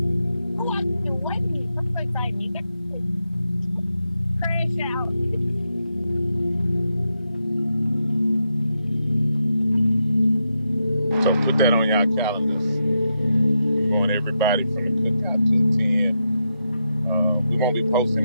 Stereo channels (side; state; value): both; inverted; correlation -0.84